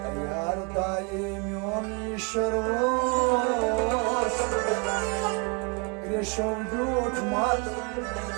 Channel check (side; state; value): left; quieter; 33.4 dB